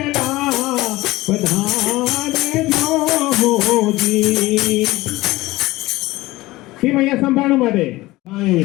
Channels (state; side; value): quieter; right; 18.9 dB